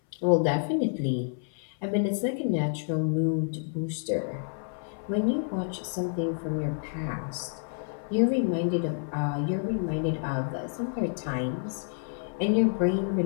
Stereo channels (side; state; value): right; silent; 59 dB below the other